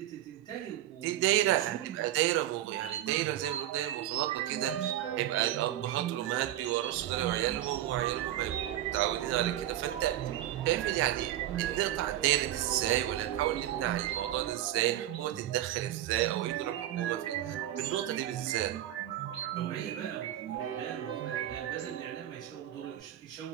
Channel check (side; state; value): left; quieter; 12.9 dB